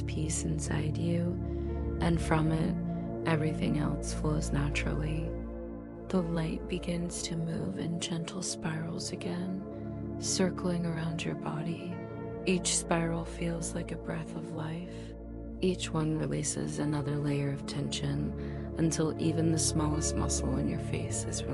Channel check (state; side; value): identical; both; correlation 1.00